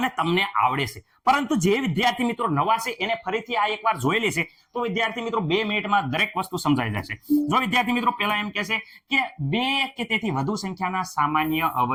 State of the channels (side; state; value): both; identical; correlation 1.00